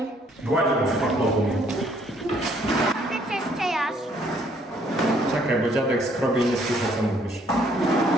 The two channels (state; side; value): normal; both; correlation 0.65